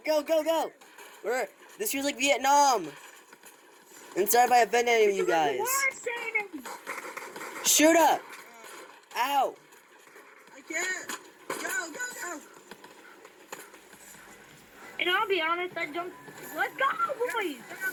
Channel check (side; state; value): both; identical; correlation 1.00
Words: Go, go, go! This feels like Vietnam! I'm sorry if I offended any of you guys. Shoot up! Ow! I can't! Go, go, go! And I'll be honest, I jumped. Let's go, boys!